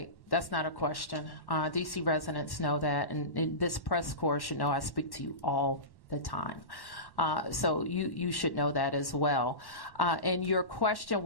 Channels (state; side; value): late; right; 1.1 ms